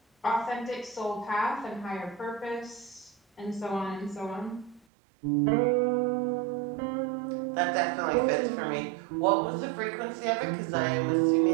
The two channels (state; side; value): drops out; left; at 4.8 s